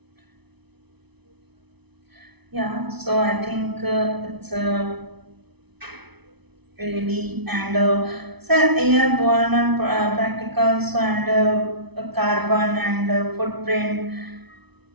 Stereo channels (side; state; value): left; late; 0.99 ms